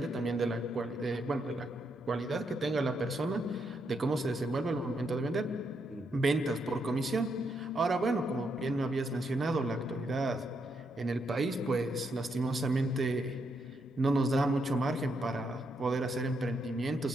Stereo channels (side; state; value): both; normal; correlation 0.79